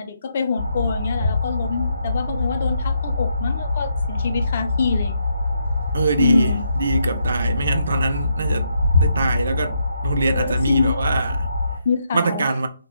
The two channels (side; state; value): both; inverted; correlation -0.78